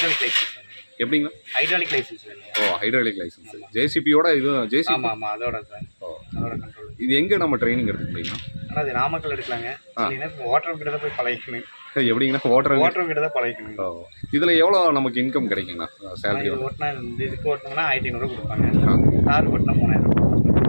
லைசன்ஸ். எப்படிங்களா? ஹைட்ராலிக் லைசன்ஸ் வேணும். Hydraulic licence. ஜேசிபியோட இது ஜேசிபி? ஆமாம், அதோட சார். அதோட கண்ட்ரோல். இது எங்கே நம்ம ட்ரைனிங் எடுக்க முடியுங்களா? ஆனால் அது நாமக்கல் எடுக்கலாங்க. ஓட்டர் கிட்ட தான் போய் பழகிக்கணும். எப்படிங்கண்ணா? ஓட்டர் கிட்ட தான் பழகிக்கணும். இதில் எவ்வளோ நமக்கு இன்கம் கிடைக்குங்கண்ணா? சேலரி ஓட்டினா இதுக்கு ஓட்டினோம்னா 1500 கொடுப்பாங்க. கார் ஓட்டினா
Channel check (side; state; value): both; inverted; correlation -1.00